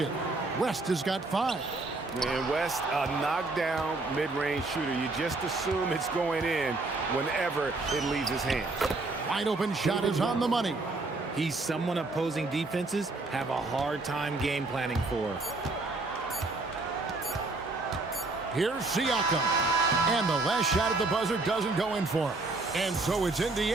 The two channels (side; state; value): left; quieter; 3.3 dB